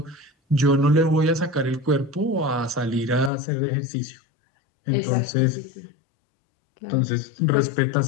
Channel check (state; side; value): drops out; right; at 3.3 s